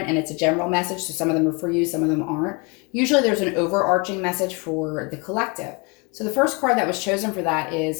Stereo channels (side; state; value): right; quieter; 30.7 dB